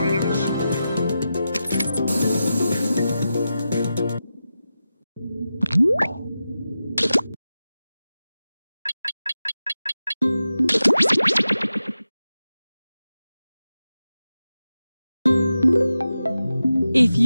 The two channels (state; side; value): inverted; both; correlation -0.92